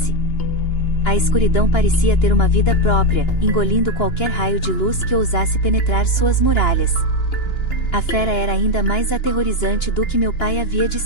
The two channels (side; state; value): right; late; 2.9 ms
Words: A escuridão parecia ter uma vida própria, engolindo qualquer raio de luz que ousasse penetrar suas muralhas. A fera era ainda mais aterrorizante do que meu pai havia